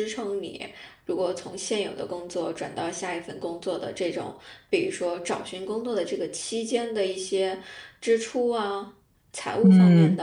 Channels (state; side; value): identical; both; correlation 1.00